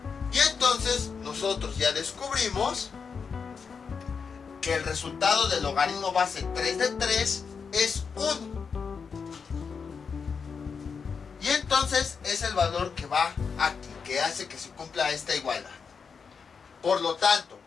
Y entonces nosotros ya descubrimos que el resultado del logaritmo base 3 de 3 es 1. Y entonces es el valor que va aquí, que hace que se cumpla esta igualdad. Por lo tanto,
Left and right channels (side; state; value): right; quieter; 5.8 dB